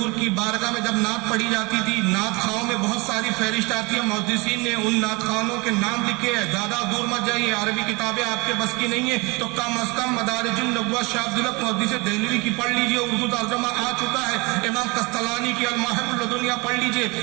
کی بارگاہ میں جب نعت پڑھی جاتی تھی، نعت خواہوں میں بہت ساری فہرست آتی ہے، محدثین نے ان نعت خواہوں کے نام لکھے ہیں۔ زیادہ دور مت جائیے، عربی کتابیں آپ کے بس کی نہیں ہے تو کم از کم مدارج النبوہ شاہ عبدالحق محدث دہلوی کی پڑھ لیجئے، اردو ترجمہ آ چکا ہے۔ امام قسطلانی کی المواہب اللدنیہ پڑھ لیجئے،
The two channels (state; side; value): quieter; left; 26.3 dB